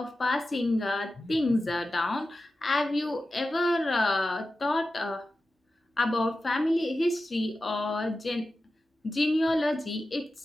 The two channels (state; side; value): normal; both; correlation 0.93